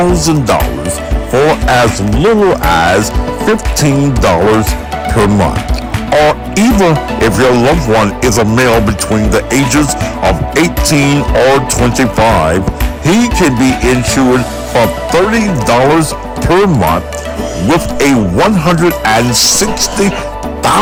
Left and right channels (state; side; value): identical; both; correlation 1.00